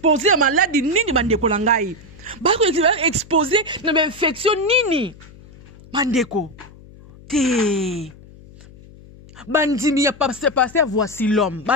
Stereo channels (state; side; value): noise; left; hum, 21 dB below the sound